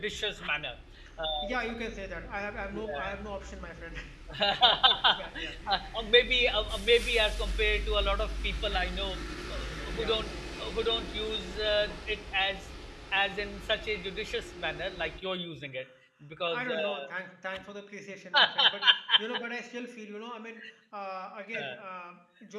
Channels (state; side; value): identical; both; correlation 1.00